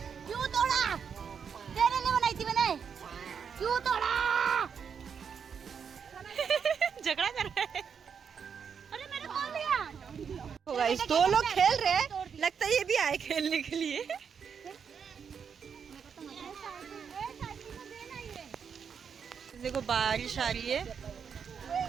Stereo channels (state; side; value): quieter; left; 6.8 dB